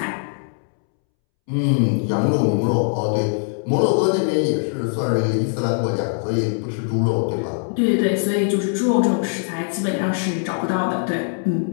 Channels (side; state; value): right; silent; 65 dB below the other